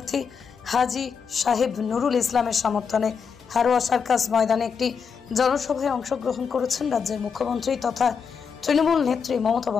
হাজী সাহেব নুরুল ইসলামের সমর্থনে হারোয়া সার্কাস ময়দানে একটি জনসভায় অংশগ্রহণ করেছেন রাজ্যের মুখ্যমন্ত্রী তথা তৃণমূল নেত্রী মমতা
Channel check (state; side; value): quieter; right; 6.2 dB